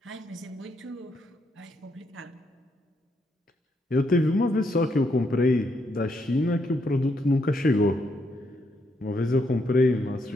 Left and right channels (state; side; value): normal; both; correlation 0.77